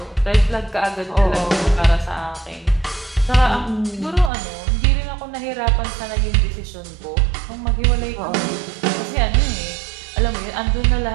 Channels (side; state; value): left; drops out; at 4.3 s